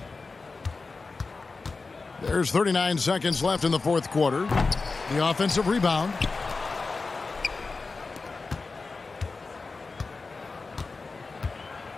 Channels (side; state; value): right; quieter; 4.0 dB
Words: There's 39 seconds left in the fourth quarter. The offensive rebound.